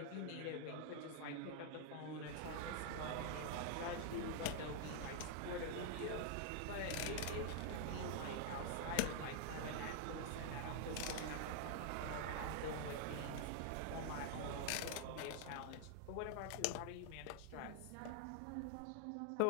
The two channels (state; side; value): different; both; correlation 0.00